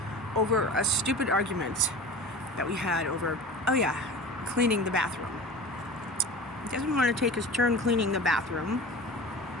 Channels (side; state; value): both; normal; correlation 0.34